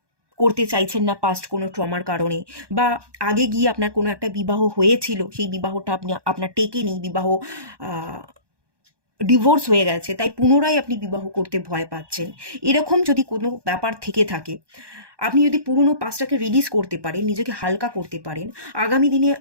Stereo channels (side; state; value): left; late; 1.2 ms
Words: করতে চাইছেন না পাস্ট কোনো ট্রমার কারণে, বা আগে গিয়ে আপনার কোনো একটা বিবাহ হয়েছিল, সেই বিবাহটা আপনার টেকেনি, বিবাহ ডিভোর্স হয়ে গেছে, তাই পুনরায় আপনি বিবাহ করতে ভয় পাচ্ছেন। এরকম যদি কোনো ব্যাপার থেকে থাকে, আপনি যদি পুরনো পাস্টটাকে রিলিজ করতে পারেন, নিজেকে হালকা করতে পারেন, আগামী দিনে